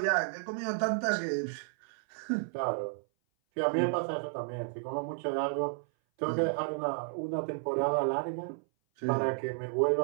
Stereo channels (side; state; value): left; silent; 56 dB below the other